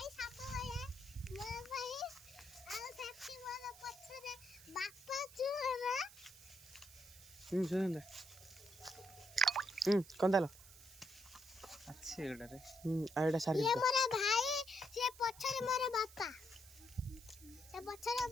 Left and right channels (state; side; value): noise; right; hiss, 19 dB below the sound